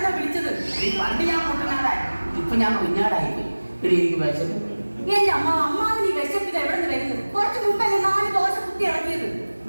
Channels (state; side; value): inverted; both; correlation -1.00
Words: വിളിച്ചത്. പണ്ട് ഞാൻ മുട്ടനാടായി, ഇപ്പൊ ഞാൻ കുഞ്ഞാടായി പോയി. എനിക്ക് വിശപ്പ്. എന്റെ അമ്മാവ് നീ വിശപ്പിത് എവിടെ നിന്ന് വരുന്നത്? കുറച്ച് മുമ്പല്ലേ 4 ദോശ കുത്തി ഇറക്കിയത്.